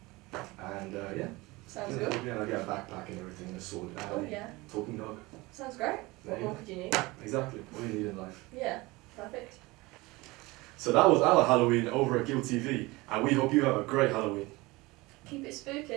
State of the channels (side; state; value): left; quieter; 22.1 dB